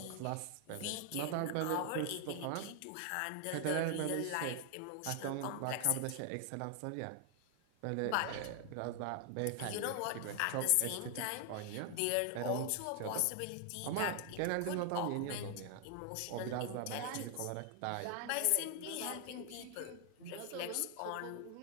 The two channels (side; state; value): both; different; correlation 0.00